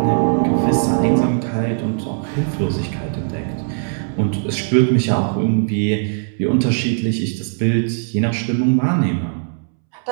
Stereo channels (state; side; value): silent; left; 66 dB below the other